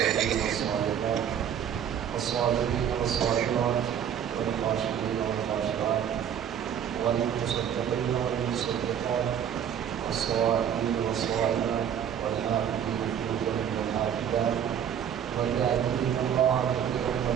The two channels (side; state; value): left; quieter; 9.0 dB